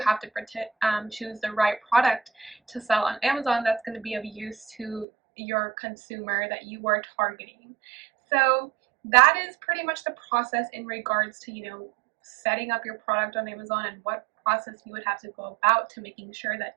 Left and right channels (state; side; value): drops out; left; at 5.1 s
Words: have to choose the right product to sell on Amazon that's going to be of use to your consumer that you are targeting. So that is pretty much the process in regards to, setting up your product on Amazon and what process you would have to go about to making sure that